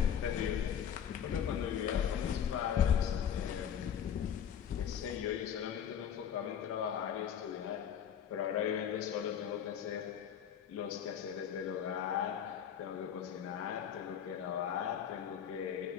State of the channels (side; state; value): right; quieter; 8.7 dB